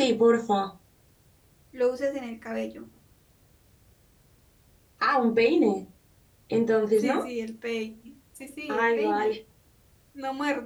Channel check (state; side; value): identical; both; correlation 1.00